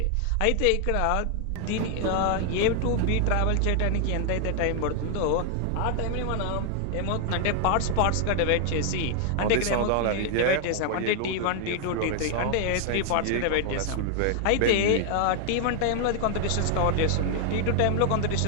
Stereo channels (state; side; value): different; both; correlation 0.00